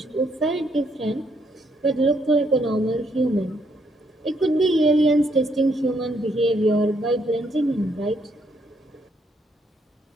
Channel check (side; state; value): both; normal; correlation 0.72